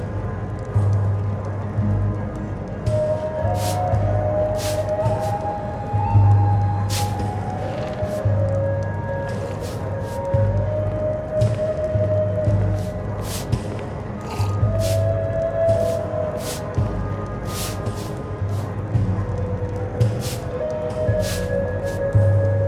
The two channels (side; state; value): both; identical; correlation 1.00